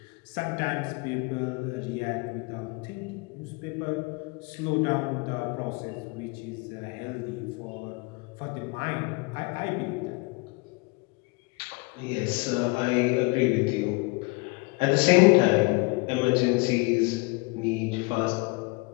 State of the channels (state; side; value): quieter; right; 28.3 dB